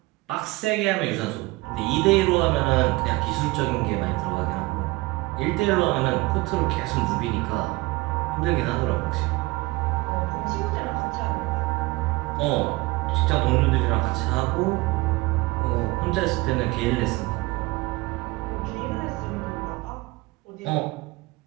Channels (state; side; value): quieter; left; 21.9 dB